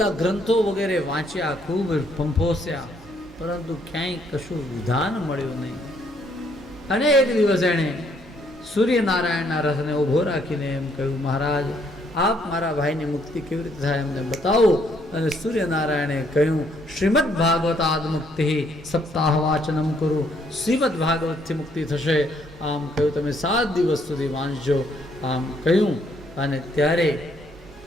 ગ્રંથો વગેરે વાંચ્યા, ખૂબ ફંફોસ્યા, પરંતુ ક્યાંય કશું વિધાન મળ્યું નહીં. અને એક દિવસ એણે સૂર્યનારાયણના રથને ઊભો રાખીને એમ કહ્યું, મહારાજ આપ મારા ભાઈની મુક્તિ કેવી રીતે થાય એમને બતાવો. અને સૂર્યનારાયણે કહ્યું, શ્રીમદ ભાગવતાદ મુક્તિ સપ્તાહ વાચનમ કરું. શ્રીમદ ભાગવતથી મુક્તિ થશે. આમ કહ્યું, તમે 7 દિવસ સુધી વાંચજો. આમ કહ્યું. અને ત્યારે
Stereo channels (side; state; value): both; normal; correlation 0.69